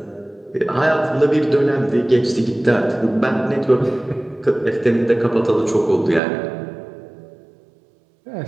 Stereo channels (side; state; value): left; drops out; at 6.2 s